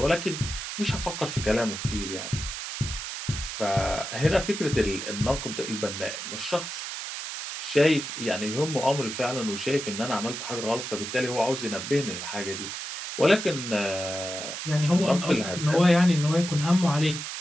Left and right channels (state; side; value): noise; right; hiss, 6 dB below the sound